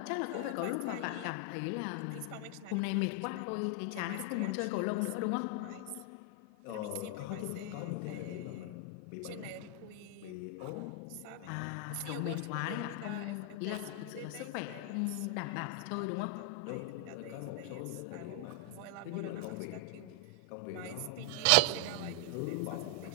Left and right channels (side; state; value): both; different; correlation 0.00